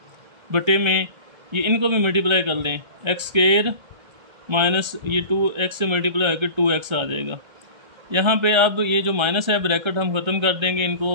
बटे में, ये इनको भी मल्टीप्लाई कर लें, x² माइनस ये 2x से मल्टीप्लाई होकर 2x आ जाएगा। यहाँ पे अब ये जो माइनस है ब्रैकेट हम ख़त्म कर देंगे,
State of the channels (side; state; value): left; late; 1.3 ms